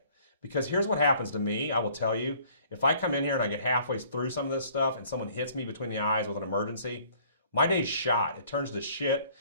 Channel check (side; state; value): both; inverted; correlation -0.57